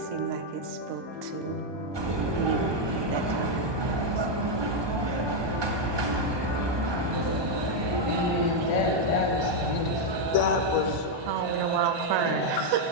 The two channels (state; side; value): late; left; 1.2 ms